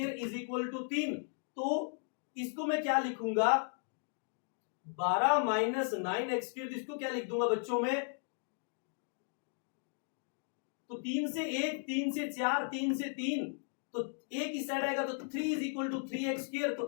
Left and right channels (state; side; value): silent; right; 54 dB below the other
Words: is equal to 3। तो इसको मैं क्या लिखूंगा 12 माइनस 9x स्क्वायर, इसको क्या लिख दूंगा बच्चों में, तो 3 से 1, 3 से 4, 3 से 3, तो एक इस साइड आएगा तो 3 is equal to 3x square.